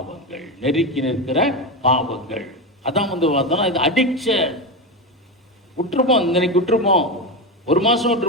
நெருக்கி நிற்கிற பாவங்கள் அதான் பார்த்தோம்னா இது அடிக்ஷன். விட்டுருப்போம், இன்னைக்கு விட்டுருப்போம், 1 மாதம்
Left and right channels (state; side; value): normal; both; correlation 0.16